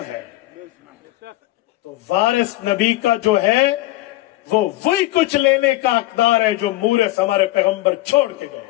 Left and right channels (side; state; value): right; quieter; 17.3 dB